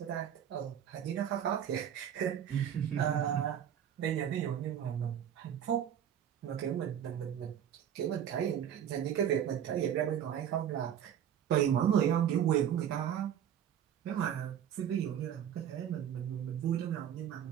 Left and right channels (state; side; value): quieter; left; 9.5 dB